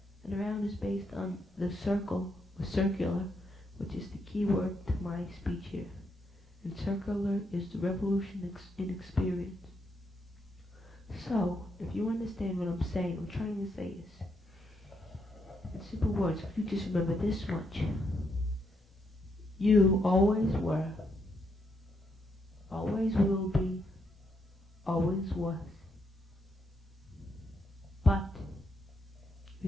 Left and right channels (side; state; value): both; normal; correlation 0.78